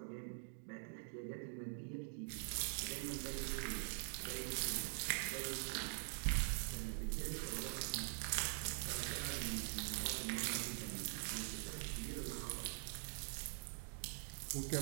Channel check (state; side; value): silent; left; digital silence